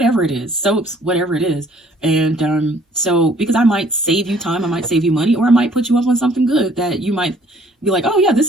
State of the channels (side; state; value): both; normal; correlation 0.59